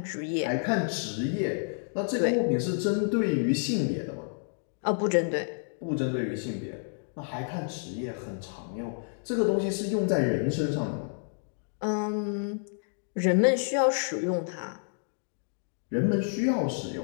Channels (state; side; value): silent; right; digital silence